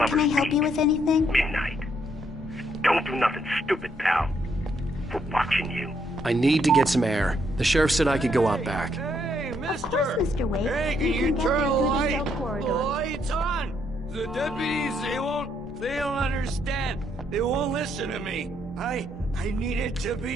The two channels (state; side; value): normal; both; correlation 0.73